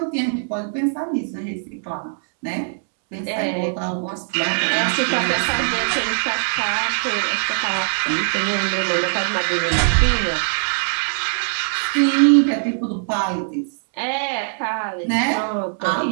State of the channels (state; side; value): silent; left; digital silence